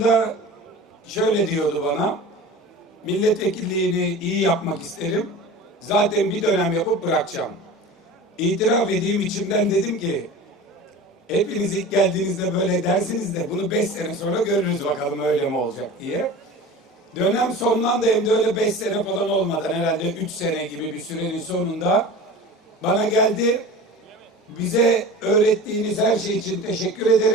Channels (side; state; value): both; normal; correlation 0.36